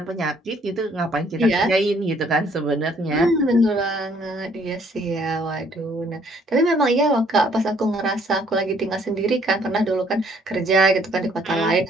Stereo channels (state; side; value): normal; both; correlation 0.63